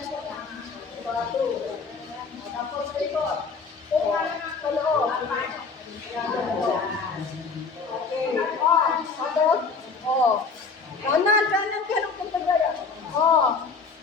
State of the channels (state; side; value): quieter; right; 4.7 dB